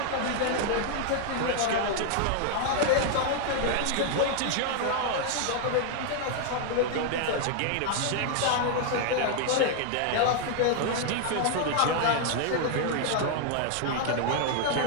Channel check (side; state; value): both; different; correlation 0.00